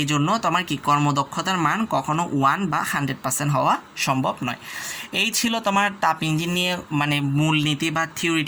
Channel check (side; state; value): both; identical; correlation 1.00